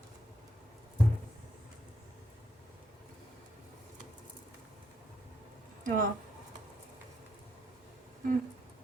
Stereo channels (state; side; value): normal; both; correlation 0.77